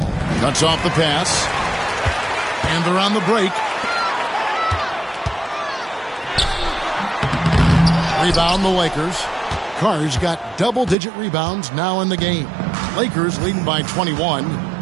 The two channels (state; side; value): drops out; left; at 11.0 s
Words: Cuts off the pass. And they're on the break. Rebound the Lakers. Carr's got double-digit rebounds now in the game. Lakers leading by 21.